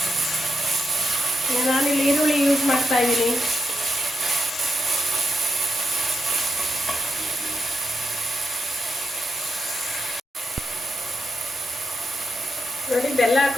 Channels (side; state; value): both; normal; correlation 0.84